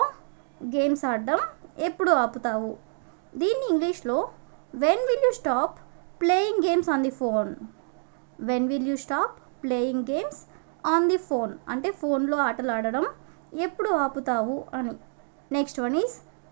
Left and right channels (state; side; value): silent; left; 60 dB below the other